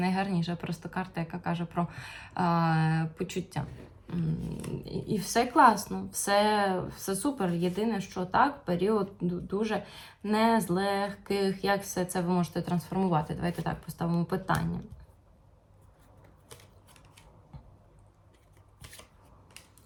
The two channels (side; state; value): both; identical; correlation 1.00